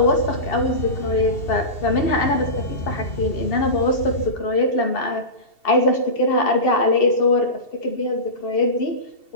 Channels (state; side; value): late; right; 2.7 ms